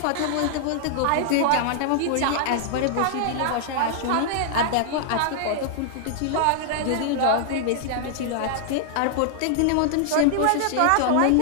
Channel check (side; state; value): both; different; correlation -0.01